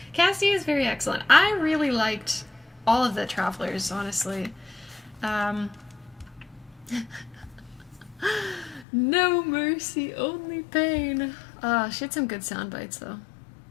Casty is very excellent. I really liked all of the travelers, honestly. No mercy, only pain. She had some good sound bites, though.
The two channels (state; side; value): drops out; right; at 8.8 s